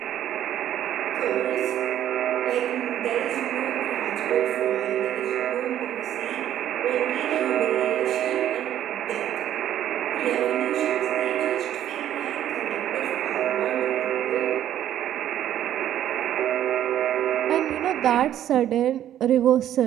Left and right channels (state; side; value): quieter; left; 11.4 dB